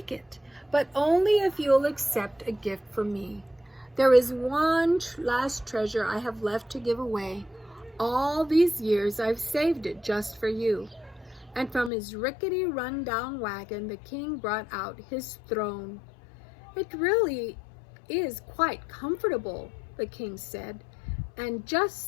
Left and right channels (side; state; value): right; drops out; at 11.9 s